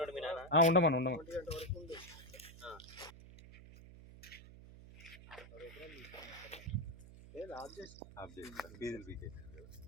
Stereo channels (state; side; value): noise; right; hum, 17 dB below the sound